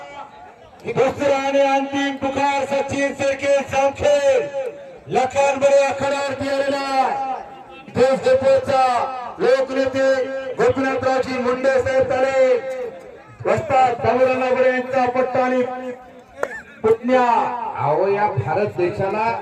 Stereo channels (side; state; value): both; identical; correlation 1.00